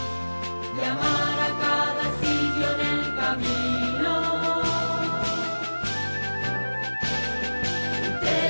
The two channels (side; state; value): both; inverted; correlation -1.00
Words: y amar a cada sitio en el camino.